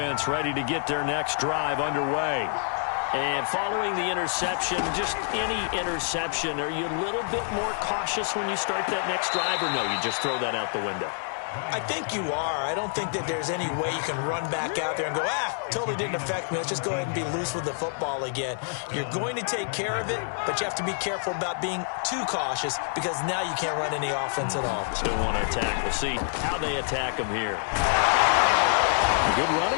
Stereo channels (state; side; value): silent; right; digital silence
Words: ready to get their next drive underway. And following the interception, just any interception, are you a little bit more cautious when you start that next drive, or no, you just throw that out the window? I think you are. I don't think that there's any way you can run back out there and go, totally didn't affect me. Let's just go ahead and be loose with the football again. You're going to take care of it, but you have to be careful about being too cautious because now you can't run any offense at all. Still want to attack. We'll see how they attack them here. Good